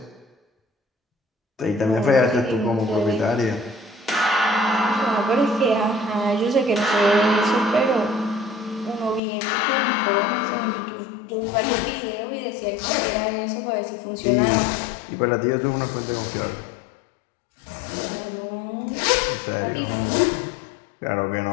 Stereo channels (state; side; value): drops out; right; at 9.2 s